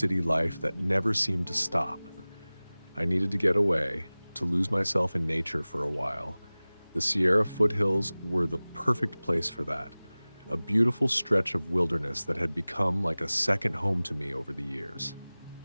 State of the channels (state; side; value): inverted; both; correlation -0.99